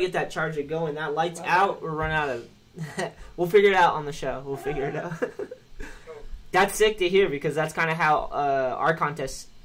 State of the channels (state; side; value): identical; both; correlation 1.00